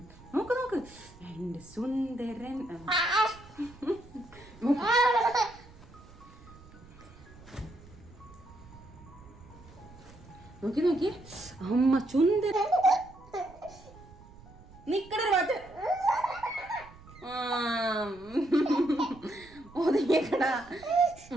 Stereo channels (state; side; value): noise; right; rumble, 21 dB below the sound